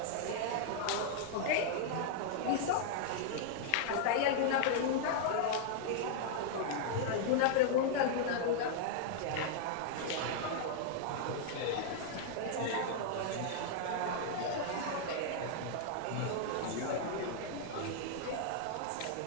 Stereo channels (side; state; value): both; different; correlation -0.01